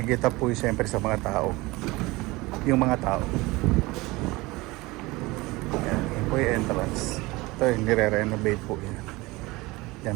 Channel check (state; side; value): quieter; left; 21.8 dB